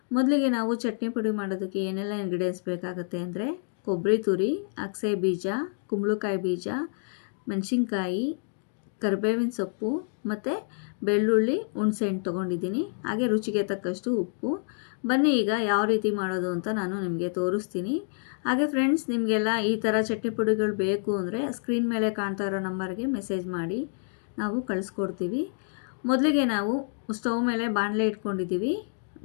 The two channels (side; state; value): right; silent; 59 dB below the other